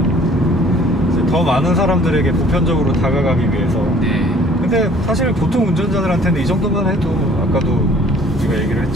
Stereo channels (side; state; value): both; normal; correlation 0.54